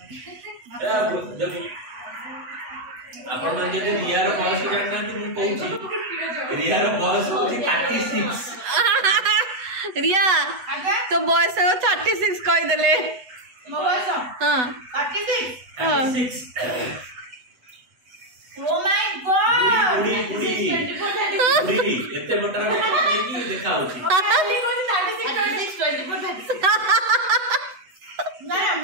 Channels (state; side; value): late; left; 8.0 ms